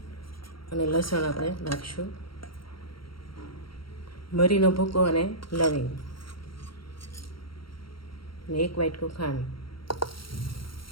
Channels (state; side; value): late; right; 0.74 ms